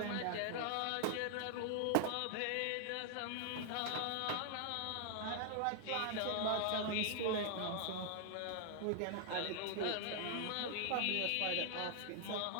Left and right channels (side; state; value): both; different; correlation 0.00